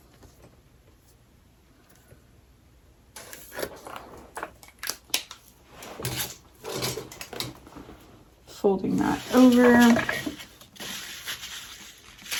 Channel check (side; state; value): both; identical; correlation 1.00